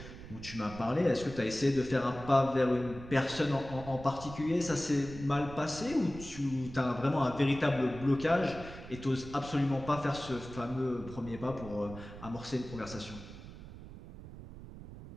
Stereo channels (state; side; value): noise; right; rumble, 14 dB below the sound